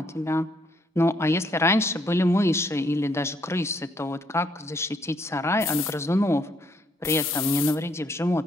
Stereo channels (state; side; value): normal; both; correlation 0.70